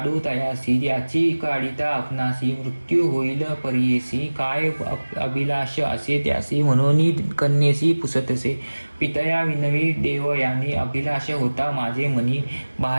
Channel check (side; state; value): both; inverted; correlation -1.00